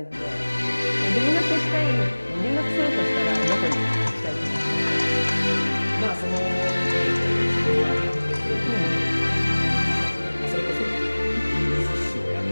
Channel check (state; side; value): inverted; both; correlation -1.00